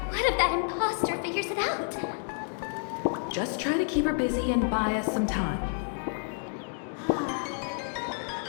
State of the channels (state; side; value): silent; right; 58 dB below the other